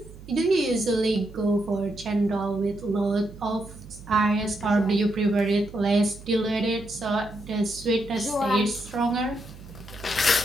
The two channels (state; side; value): noise; right; hum, 17 dB below the sound